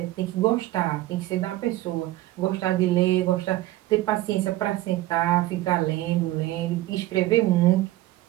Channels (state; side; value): quieter; left; 16.3 dB